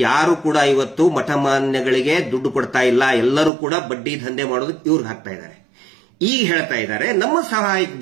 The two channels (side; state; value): left; drops out; at 3.5 s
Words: ಯಾರು ಕೂಡ ಇವತ್ತು ಮಠಮಾನ್ಯಗಳಿಗೆ ದುಡ್ಡು ಕೊಡ್ತಾ ಇಲ್ಲ. ಎಲ್ಲರೂ ಕೂಡ ಬಡ್ಡಿ ದಂಧೆ ಮಾಡೋದಕ್ಕೆ ಇವ್ರಿಗೆ ಹಾಕ್ತಾ ಇದ್ದಾರೆ. ಈಗ ಹೇಳ್ತಾ ಇದ್ದಾರೆ ನಮ್ಮ ಸಹಾಯಕ್ಕೆ